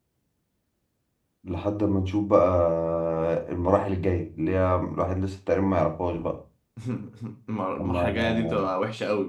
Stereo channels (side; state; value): both; identical; correlation 1.00